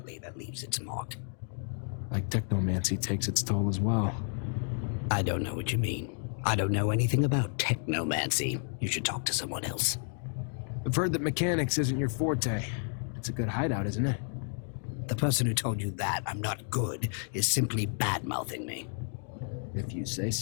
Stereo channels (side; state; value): right; silent; 57 dB below the other